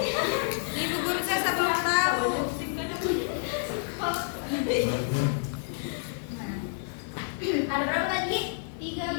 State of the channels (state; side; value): silent; right; digital silence